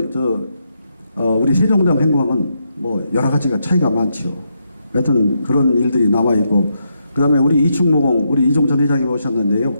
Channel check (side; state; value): both; inverted; correlation -0.81